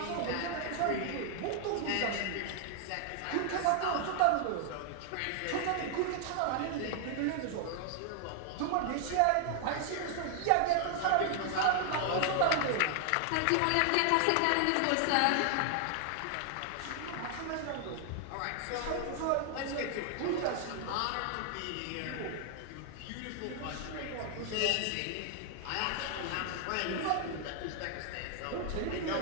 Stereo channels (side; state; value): both; different; correlation 0.00